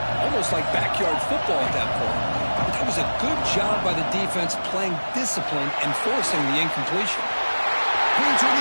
almost like backyard football at that point. But that was a good job by the defense playing discipline and forcing the incompletion. Queens in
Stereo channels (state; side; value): inverted; both; correlation -1.00